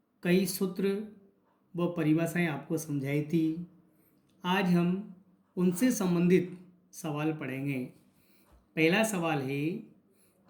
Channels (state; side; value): identical; both; correlation 1.00